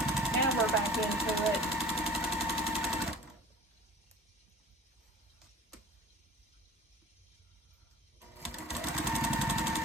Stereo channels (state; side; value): normal; both; correlation 0.44